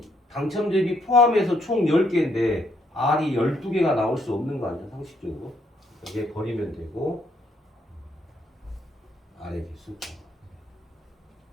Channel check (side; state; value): both; normal; correlation 0.71